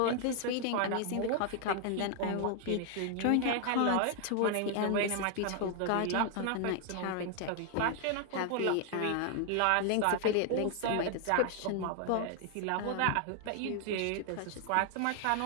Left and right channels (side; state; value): both; different; correlation 0.00